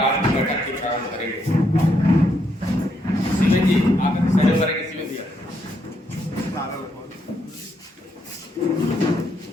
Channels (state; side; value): normal; both; correlation 0.76